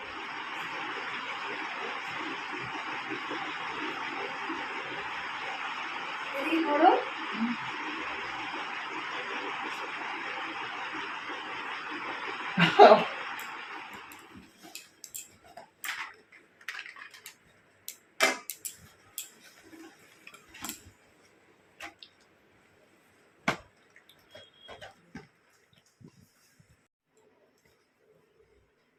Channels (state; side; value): identical; both; correlation 1.00